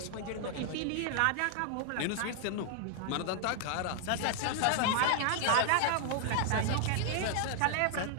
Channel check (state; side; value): different; both; correlation 0.00